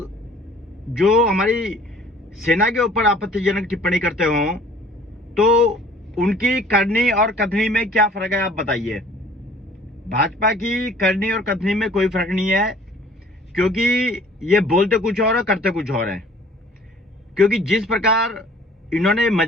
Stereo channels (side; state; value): both; normal; correlation 0.52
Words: जो हमारी सेना के ऊपर आपत्तिजनक टिप्पणी करते हो तो उनकी करनी और कथनी में क्या फर्क है, आप बताइए। भाजपा की करनी और कथनी में कोई फर्क नहीं है, क्योंकि ये बोलते कुछ और है, करते कुछ और है। क्योंकि जिस प्रकार इन्होंने